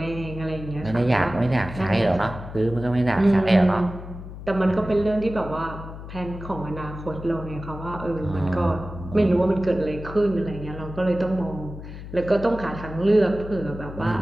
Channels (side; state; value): left; noise; hum, 12 dB below the sound